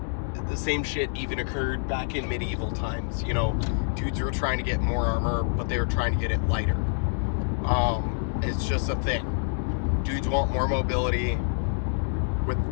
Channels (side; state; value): right; silent; digital silence